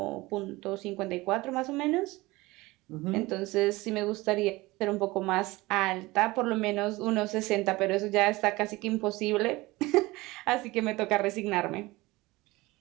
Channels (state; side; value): quieter; left; 20.9 dB